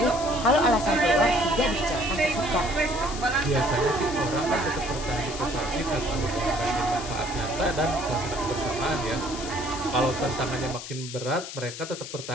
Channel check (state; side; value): noise; left; hiss, 10 dB below the sound